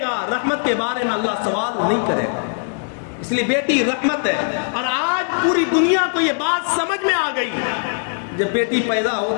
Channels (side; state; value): right; silent; digital silence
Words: گا، رحمت کے بارے میں اللہ سوال نہیں کرے گا، اس لیے بیٹی رحمت ہے۔ اور آج پوری دنیا کو یہ بات سمجھ میں آ گئی، جب بیٹی پیدا